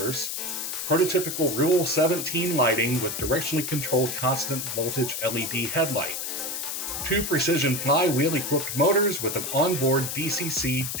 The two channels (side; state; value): left; noise; hiss, 4 dB below the sound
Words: prototypical Rule 17 lighting with directionally controlled constant voltage LED headlight, 2 precision flywheel-equipped motors with an onboard